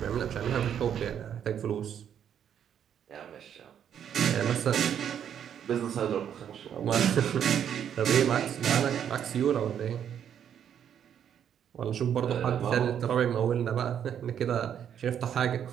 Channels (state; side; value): quieter; left; 9.0 dB